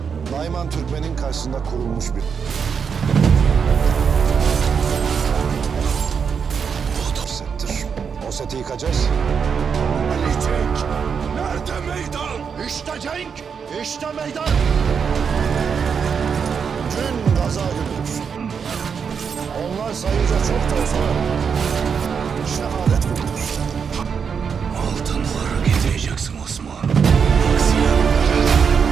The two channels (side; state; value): left; quieter; 6.5 dB